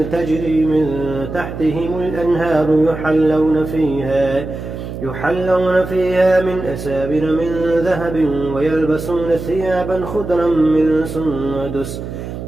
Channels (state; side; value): noise; right; hum, 8 dB below the sound